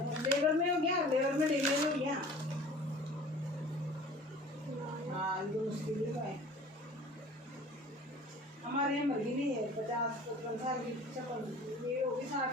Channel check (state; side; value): normal; both; correlation 0.45